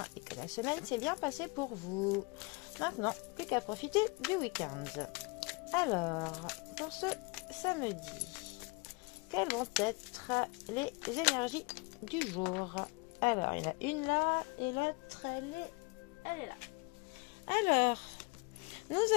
et que la semaine s'est bien passée pour vous. Maintenant, plus qu'à profiter du week-end. Alors, pour ce samedi, quelles vont être les énergies du jour? Alors, il y en a une là et l'autre, elle est là. Alors, nous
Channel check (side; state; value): right; quieter; 27.8 dB